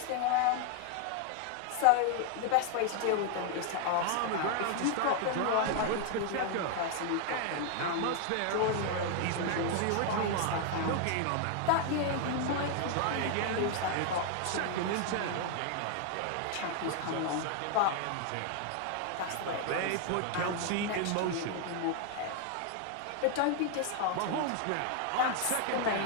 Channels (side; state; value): both; different; correlation 0.00